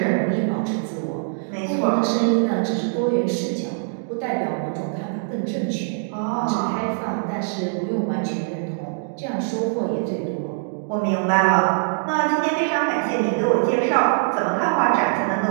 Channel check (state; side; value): silent; left; digital silence